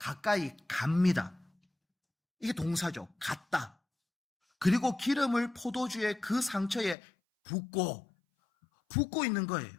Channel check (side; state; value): right; drops out; at 7.0 s